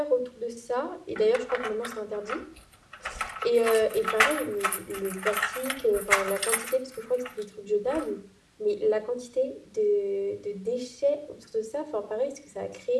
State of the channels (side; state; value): both; identical; correlation 1.00